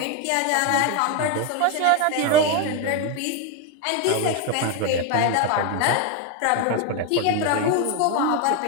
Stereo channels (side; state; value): both; different; correlation 0.02